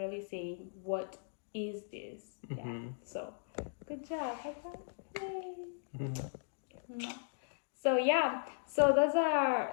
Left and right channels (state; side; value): silent; right; digital silence